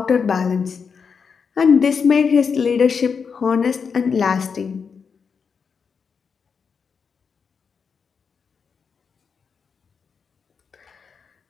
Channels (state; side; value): quieter; right; 5.9 dB